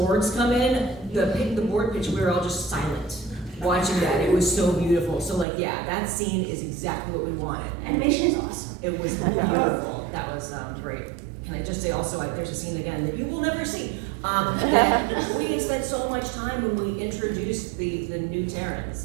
come in, the board pitch, we were all just silent watching that. It was so beautiful. So like, yeah, that scene is exactly what we wanted. Animation is awesome. It was beautiful. That was great. Can I just say also, there's a scene again that you will never see. That we spent so much time when we introduced the new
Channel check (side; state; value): left; drops out; at 5.5 s